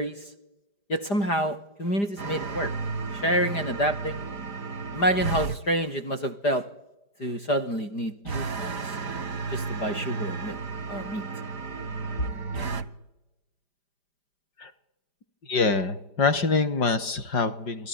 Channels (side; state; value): right; late; 5.0 ms